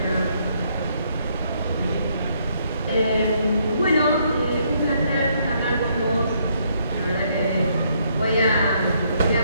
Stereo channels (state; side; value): inverted; both; correlation -0.71